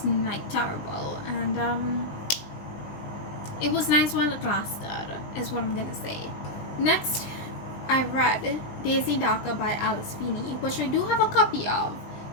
like terrible, and it was nice while it lasted, is what I'm gonna say. Next, I read Daisy Darker by Alice Feeney, which I do have a copy of,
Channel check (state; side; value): late; right; 20 ms